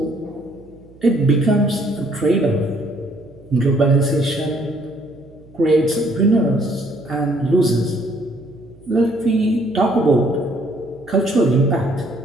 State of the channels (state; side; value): noise; right; hum, 25 dB below the sound